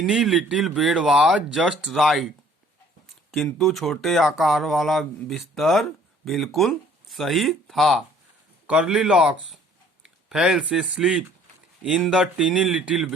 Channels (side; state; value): both; normal; correlation 0.56